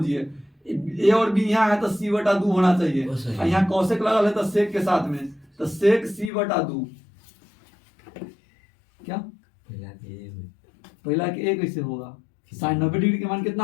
ए और बी यहाँ है तो सी बटा 2 होना चाहिए, और यहाँ कॉसेक लगल है तो सेक के साथ में, तो सेक सी बटा 2। क्या पहला के ए कैसे होगा? साइन 90 डिग्री के मान कितना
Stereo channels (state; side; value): drops out; right; at 6.3 s